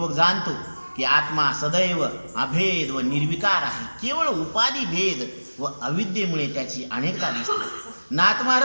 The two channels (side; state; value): both; inverted; correlation -1.00